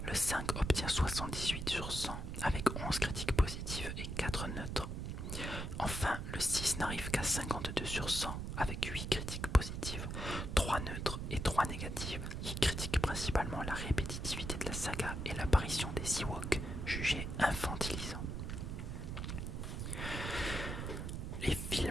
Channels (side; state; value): right; noise; rumble, 4 dB below the sound